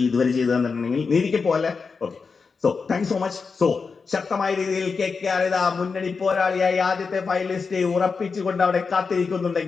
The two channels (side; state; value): right; quieter; 5.0 dB